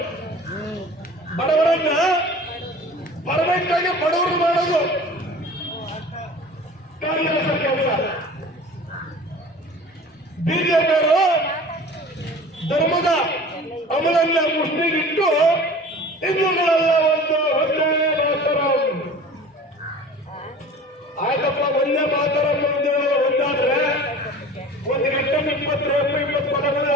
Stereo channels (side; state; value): both; normal; correlation 0.41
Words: ಬಡವರನ್ನ ಪರ್ಫೆಕ್ಟ್ ಆಗಿ ಬಡವರು ಮಾಡೋದು ಕಾಂಗ್ರೆಸ್ ಕೆಲಸ. ಬಿಜೆಪಿಯವರು ಧರ್ಮದ ಅಮಲನ್ನ ಮುಸ್ಲಿಗಿಟ್ಟು ಹಿಂದೂಗಳೆಲ್ಲ ಒಂದೇ ಮಾತರ. ಆಯ್ತಪ್ಪ, ಒಂದೇ ಮಾತರ ಒಂದಾದ್ರೆ ಒಂದು ಗಂಟೆ 20 ಪದಗಳು